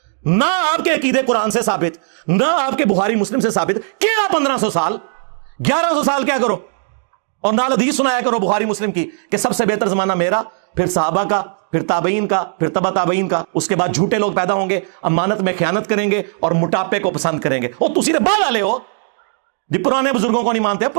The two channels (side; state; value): left; silent; digital silence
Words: نہ آپ کے عقیدے قرآن سے ثابت، نہ آپ کے بخاری مسلم سے ثابت. کیڑا 1500 سال، 1100 سال کیا کرو، اور نال حدیث سنایا کرو بخاری مسلم کی کہ سب سے بہتر زمانہ میرا، پھر صحابہ کا، پھر تابعین کا، پھر تبع تابعین کا. اس کے بعد جھوٹے لوگ پیدا ہوں گے، امانت میں خیانت کریں گے اور موٹاپے کو پسند کریں گے. اور تسی بعد والے ہو جی پرانے بزرگوں کو نہیں مانتے،